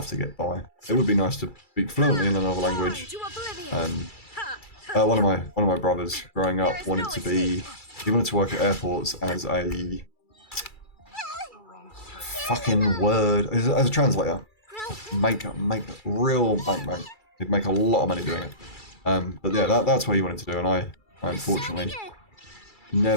to get by. It would be nice to speak fluently in another language. One of my brothers growing up he wanted to work at airports as a fucking word, as a translator. Make real bank. He'd make a lot of money doing it. But yeah, that's what he wanted to do, and I unfortunately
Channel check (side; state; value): right; late; 2.3 ms